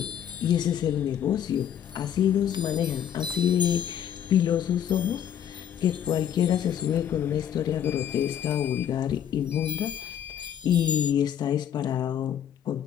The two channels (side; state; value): right; quieter; 9.6 dB